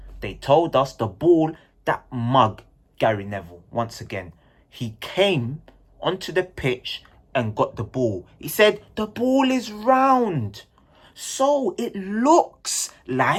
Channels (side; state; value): both; identical; correlation 1.00